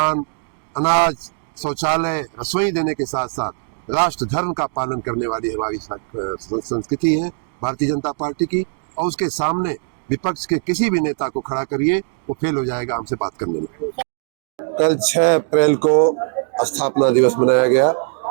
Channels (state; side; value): silent; left; digital silence